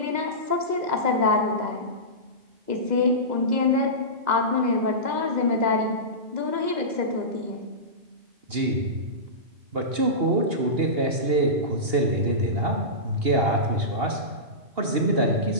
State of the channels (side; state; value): left; late; 2.8 ms